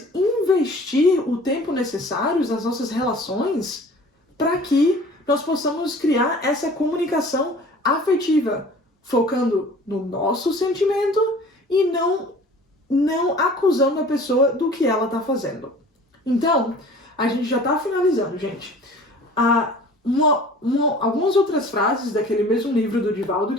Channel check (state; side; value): normal; both; correlation 0.46